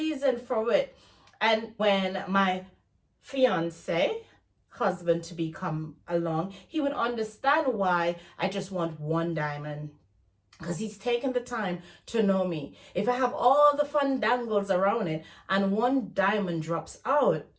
for it. And when my fiance, husband to be, come along, he would understand why I just want one diamond. Because he's taken the time to know me. If I have all the fun dangles around it and one diamond drops out,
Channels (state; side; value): identical; both; correlation 1.00